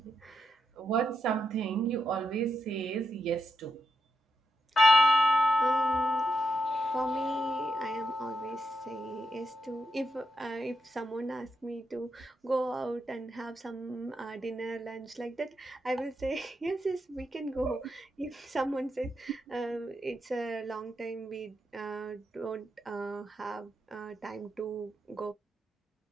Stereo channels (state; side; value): normal; both; correlation 0.83